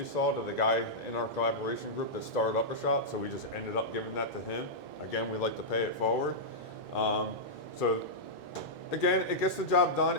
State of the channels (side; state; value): left; late; 2.0 ms